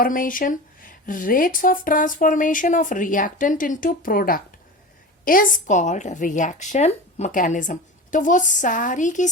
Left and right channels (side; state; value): both; normal; correlation 0.30